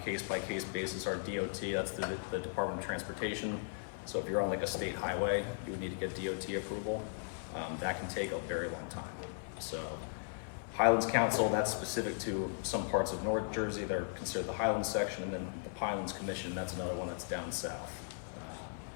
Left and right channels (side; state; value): right; silent; 53 dB below the other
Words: case-by-case basis are DOT, that's the Department of Transportation. So if you're on like a state highway, you would need to get DOT approval. That can take a very long time. So Highlands Council, that's specific to some parts of North Jersey, they're considered the Highlands section, and then the Highlands Commission, that's another one that's down south.